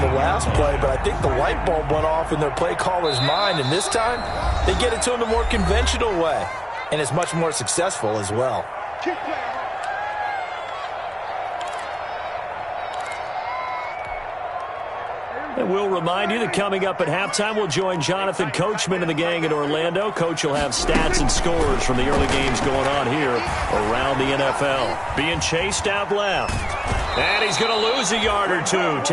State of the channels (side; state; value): both; identical; correlation 1.00